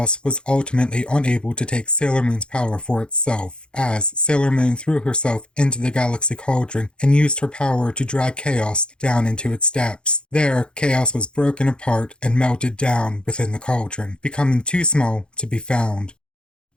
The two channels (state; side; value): late; right; 0.052 ms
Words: was ultimately unable to take Sailor Moon's power for itself, as Sailor Moon threw herself into the Galaxy Cauldron and used her power to drag Chaos down into its depths. There, Chaos was broken apart and melted down within the cauldron, becoming too small to be found.